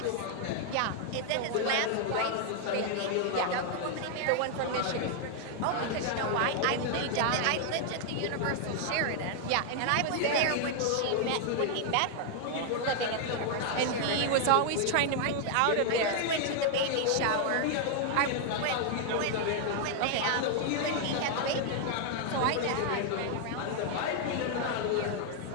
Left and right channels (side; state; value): both; different; correlation 0.00